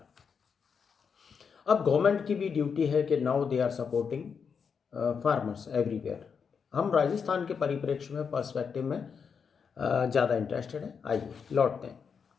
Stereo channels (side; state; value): right; quieter; 6.3 dB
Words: अब गवर्नमेंट की भी ड्यूटी है कि now they are supporting farmers everywhere. हम राजस्थान के परिप्रेक्ष्य में, पर्सपेक्टिव में ज़्यादा इंटरेस्टेड है। आइए लौटते हैं।